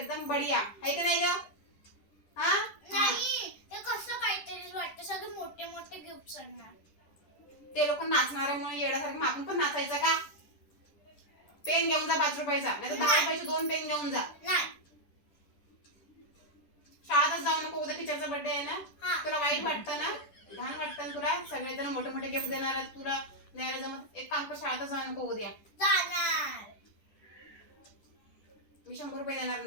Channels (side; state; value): right; late; 10 ms